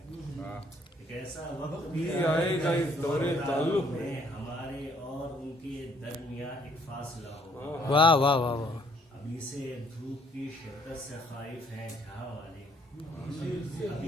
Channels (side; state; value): both; normal; correlation 0.65